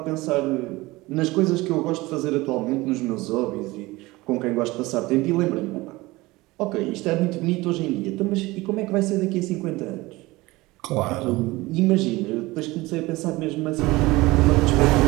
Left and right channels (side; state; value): left; quieter; 20.6 dB